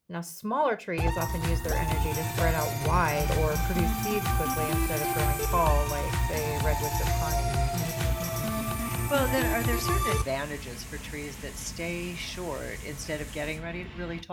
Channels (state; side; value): identical; both; correlation 1.00